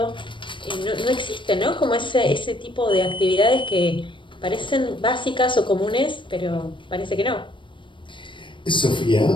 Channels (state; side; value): late; right; 0.24 ms